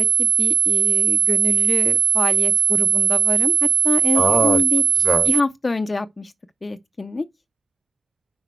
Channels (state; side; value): quieter; left; 5.0 dB